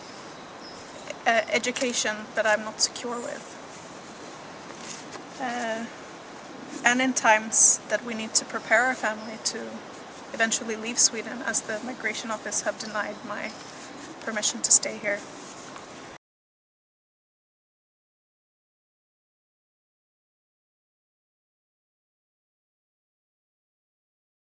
education that I'm not secure with. And in times that we need to prepare our family to eventually leave Sweden, as the migration office have denied my permission to stay here.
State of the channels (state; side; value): identical; both; correlation 1.00